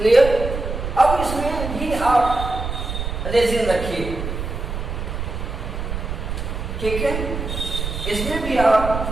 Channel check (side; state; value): right; noise; rumble, 5 dB below the sound